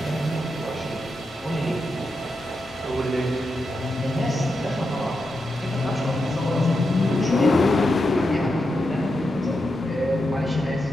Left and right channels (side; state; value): both; normal; correlation 0.87